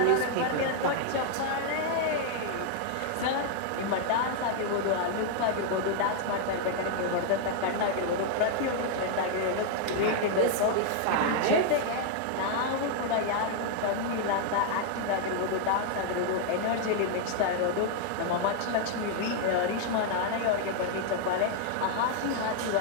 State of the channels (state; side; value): different; both; correlation 0.00